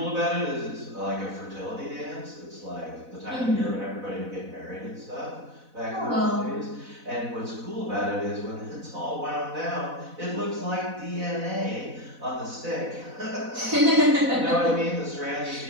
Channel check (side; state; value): left; late; 4.0 ms